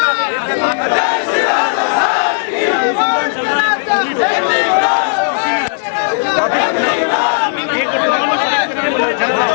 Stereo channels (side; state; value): right; silent; digital silence